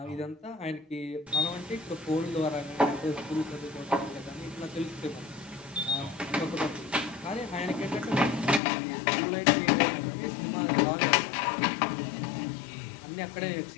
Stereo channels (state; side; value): drops out; right; at 8.6 s